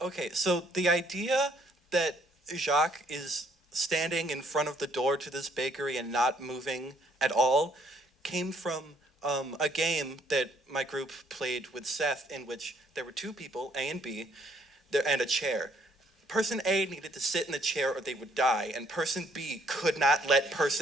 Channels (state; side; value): normal; both; correlation 0.66